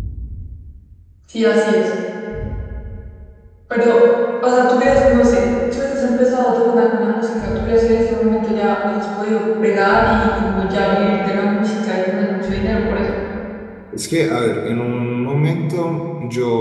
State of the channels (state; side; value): identical; both; correlation 1.00